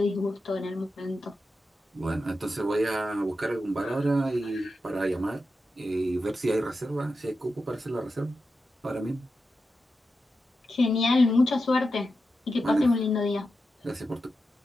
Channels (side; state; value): both; normal; correlation 0.90